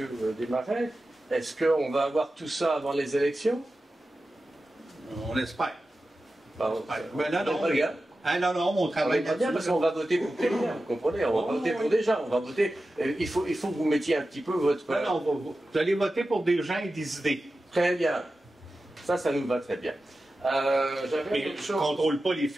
Desmarais, est-ce qu'on va avoir tout ça avant les élections? On l'espère. Pardon. Mais non, on travaille bien parce qu'on va voter pour quelqu'un, vous comprenez? On va voter pour des gens, on va voter... Il faut que vous mettiez un petit peu votre... Non, vous allez voter pour des gens et des idées. Très bien. Ça nous va très bien. Mais je ne contrôle pas les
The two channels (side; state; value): both; normal; correlation 0.93